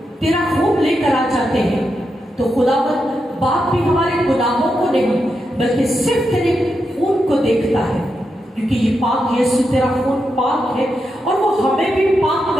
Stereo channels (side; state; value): both; normal; correlation 0.86